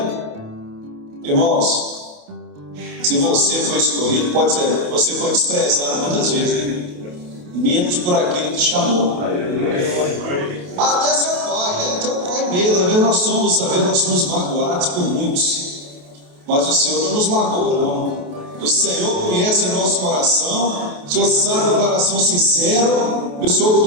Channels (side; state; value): left; late; 28 ms